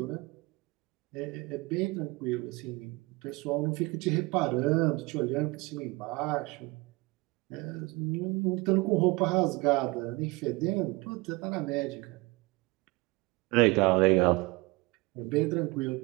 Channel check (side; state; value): left; quieter; 24.1 dB